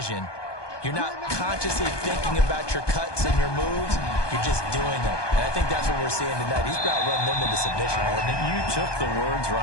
you're not consciously thinking about your cuts and your moves. You're just doing them. And I think that's what we're seeing tonight. He's about run them into submission. You took the words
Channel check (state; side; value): late; right; 1.2 ms